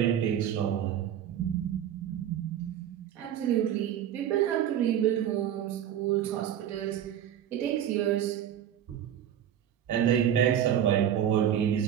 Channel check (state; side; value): quieter; left; 10.2 dB